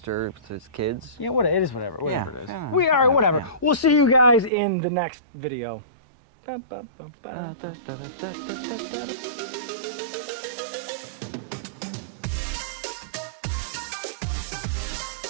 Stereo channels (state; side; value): drops out; left; at 4.5 s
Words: his kids. Yeah, what it is, whatever it is. Yeah. We are whatever. We'll see you guys in the next video.